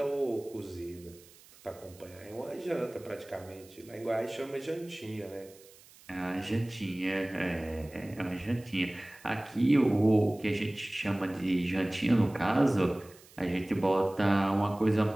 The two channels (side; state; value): right; noise; hiss, 24 dB below the sound